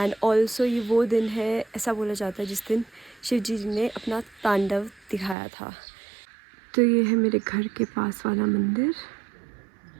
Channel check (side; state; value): left; drops out; at 5.4 s